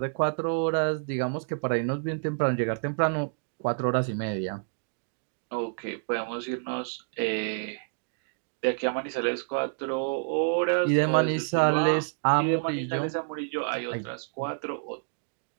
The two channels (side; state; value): left; silent; digital silence